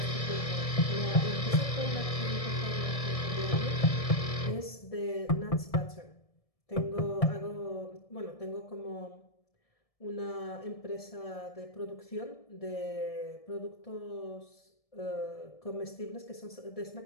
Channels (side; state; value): right; late; 1.7 ms